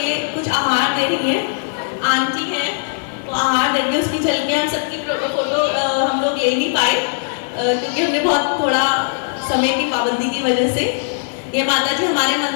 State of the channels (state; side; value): silent; right; digital silence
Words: कुछ आहार दे रही है, आंटी है तो आहार देंगे, उसकी झलकियाँ हम सबकी फोटो हम लोग ले नहीं पाए क्योंकि हमने बहुत थोड़ा समय की पाबंदी की वजह से। ये माता जी हमारे